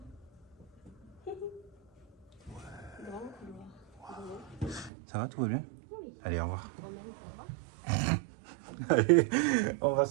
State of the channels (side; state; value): left; drops out; at 4.9 s